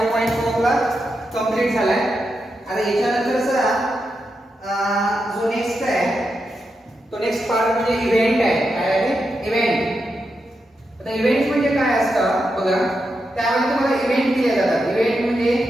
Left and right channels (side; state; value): both; normal; correlation 0.86